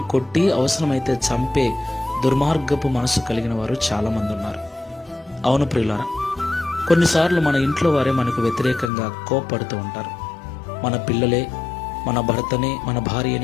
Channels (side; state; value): right; drops out; at 8.9 s